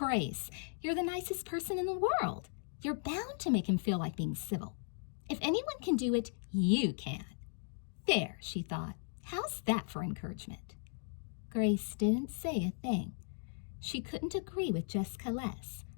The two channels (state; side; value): silent; right; digital silence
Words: you're the nicest person in the world. You're bound to make him feel like being civil. If anyone can do it, you can." There, she thought. How's that for encouragement? Grace didn't say a thing. She couldn't agree with Jessica less.